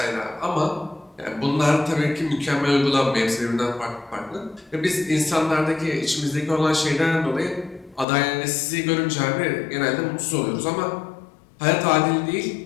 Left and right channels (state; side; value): drops out; right; at 8.1 s